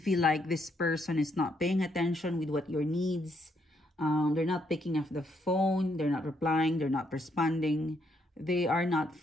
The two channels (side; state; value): both; normal; correlation 0.74